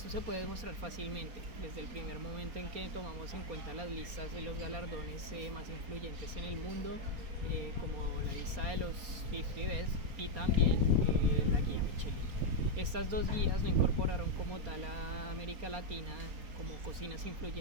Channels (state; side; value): late; left; 4.3 ms